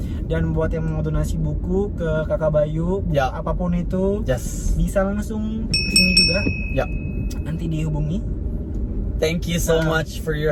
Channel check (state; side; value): identical; both; correlation 1.00